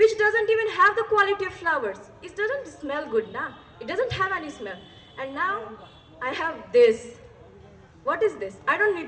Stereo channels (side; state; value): both; identical; correlation 1.00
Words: doesn't even have the quality of flowers. It doesn't smell good, nah? It doesn't have any smell. And now I have this. What is this? I don't